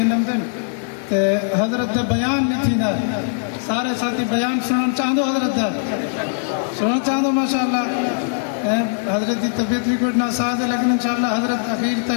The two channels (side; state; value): right; silent; 66 dB below the other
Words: دن حضرت دے بیان نہیں تھی نا سارے ساتھی بیان سنن چاہدو حضرت دا سنن چاہدو ماشاءاللہ حضرت دی طبیعت بھی کچھ ناساز ہے لیکن انشاءاللہ حضرت اخیر